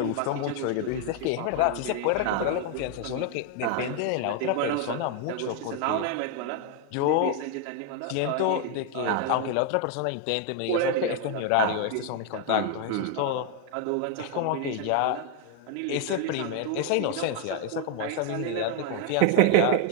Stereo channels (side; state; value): both; different; correlation 0.01